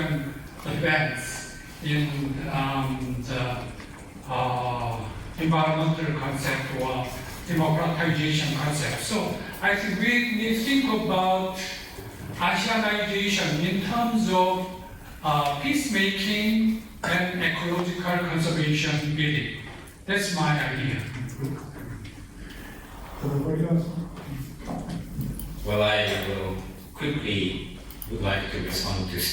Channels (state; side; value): identical; both; correlation 1.00